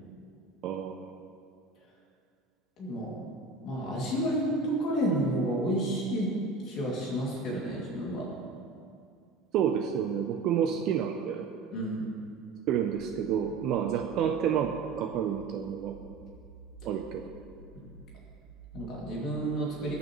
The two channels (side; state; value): left; quieter; 4.1 dB